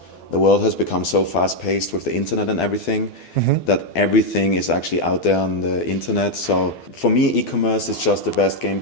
The world has become so fast-paced with the internet and everything that everything is actually out there on the internet. So for me, e-commerce is just the best game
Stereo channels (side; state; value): right; late; 12 ms